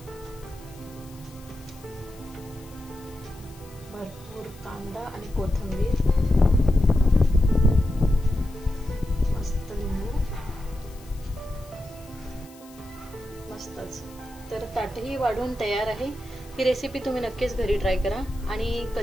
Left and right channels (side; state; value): left; noise; hiss, 23 dB below the sound